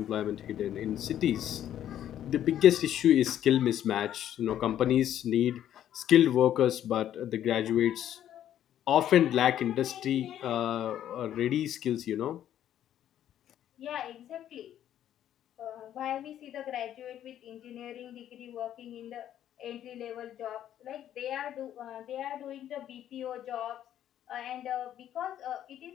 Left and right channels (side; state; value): right; quieter; 11.1 dB